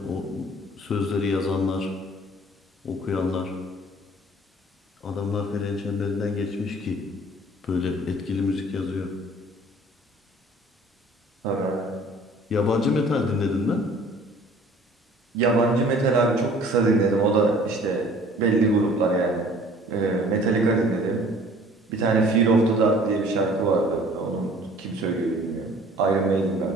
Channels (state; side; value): normal; both; correlation 0.51